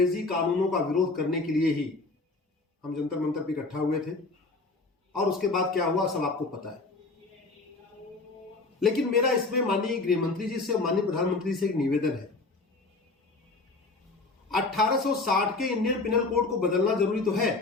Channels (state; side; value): quieter; right; 3.5 dB